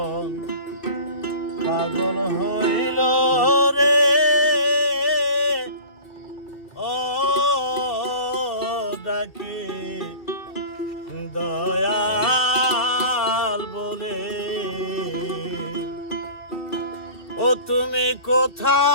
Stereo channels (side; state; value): right; late; 2.3 ms